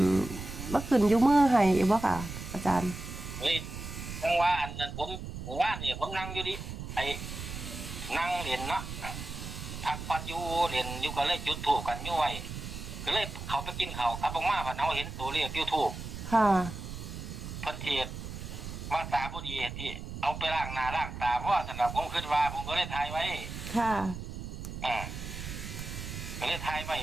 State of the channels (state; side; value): noise; right; rumble, 8 dB below the sound